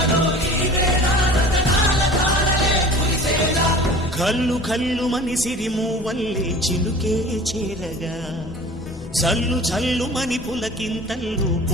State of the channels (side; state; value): both; normal; correlation 0.42